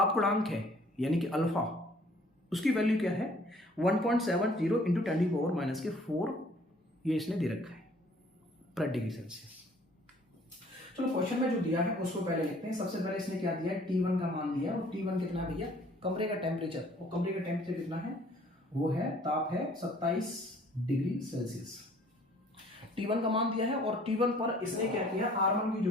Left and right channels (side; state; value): both; normal; correlation 0.57